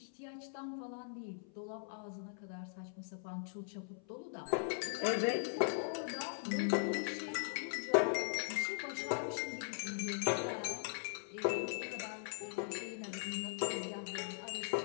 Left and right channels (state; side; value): silent; right; 51 dB below the other